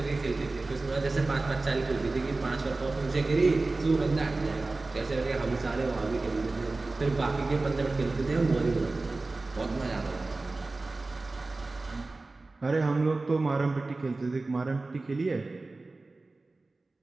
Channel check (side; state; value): left; quieter; 3.3 dB